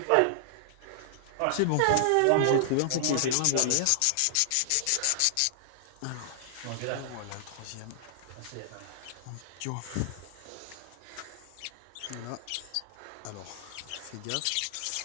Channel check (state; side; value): different; both; correlation -0.01